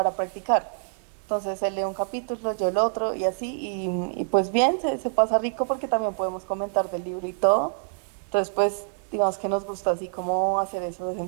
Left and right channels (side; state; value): left; silent; digital silence